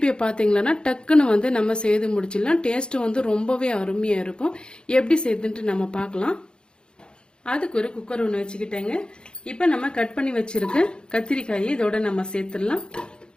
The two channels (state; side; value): late; right; 0.050 ms